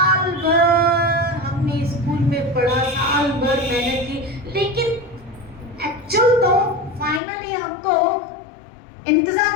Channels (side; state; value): right; drops out; at 7.2 s